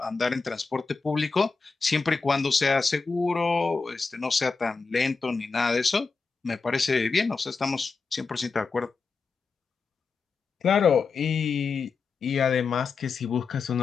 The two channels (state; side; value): quieter; right; 4.6 dB